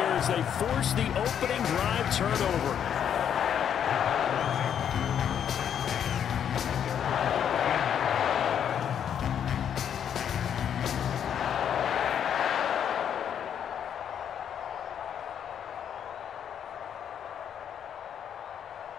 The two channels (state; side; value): quieter; right; 8.8 dB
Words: as they force the opening drive turnover.